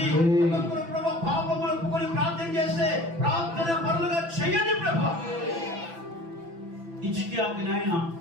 ఒక్కొక్కరు ప్రభా పాపములు ఒప్పుకొని ప్రార్థన చేస్తే ప్రార్థన పరులుగా చేయండి ప్రభా. ఇచ్చికి నాయన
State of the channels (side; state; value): left; late; 6.0 ms